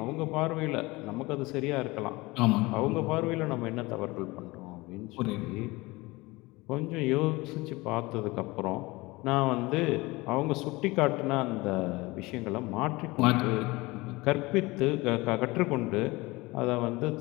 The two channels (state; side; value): quieter; right; 22.2 dB